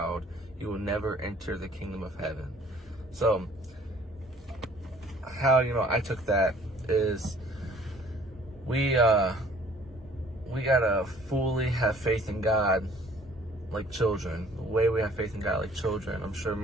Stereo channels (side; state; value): both; normal; correlation 0.55